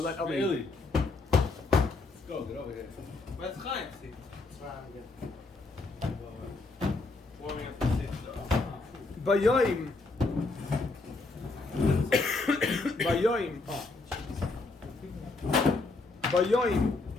Eli. Really? Go, get over here. Where's Chaim? Warming up the seat. Bayoim. Bayoim. Bayoim.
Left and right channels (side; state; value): right; quieter; 3.5 dB